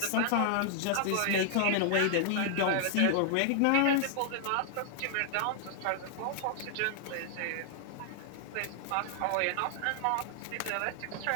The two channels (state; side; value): different; both; correlation -0.01